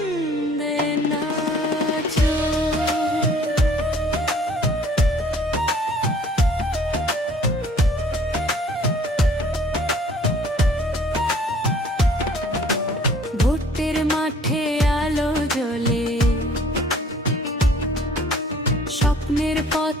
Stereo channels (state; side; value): normal; both; correlation 0.54